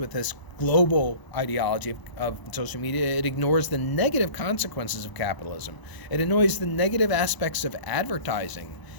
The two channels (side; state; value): right; late; 1.0 ms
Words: this global ideology of social media, it ignores the negative consequences of capitalism. It ignores the negative aspects of advertising